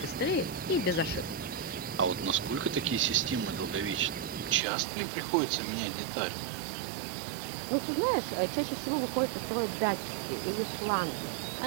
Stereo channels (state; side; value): drops out; left; at 4.6 s